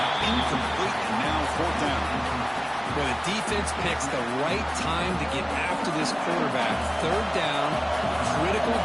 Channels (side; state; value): both; identical; correlation 1.00